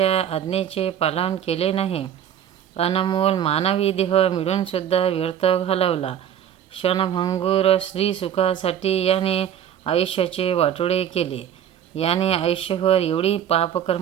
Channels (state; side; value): quieter; left; 9.8 dB